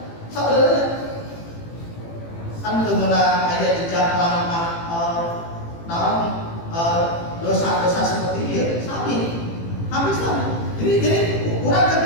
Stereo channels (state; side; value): late; right; 18 ms